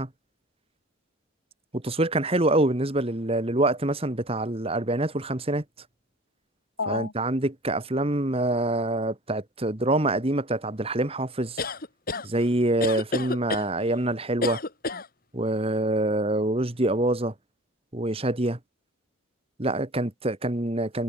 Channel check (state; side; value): normal; both; correlation 0.43